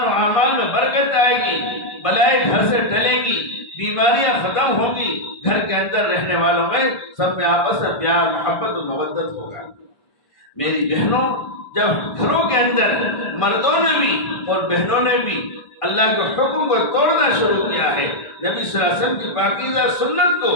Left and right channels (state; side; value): late; right; 1.5 ms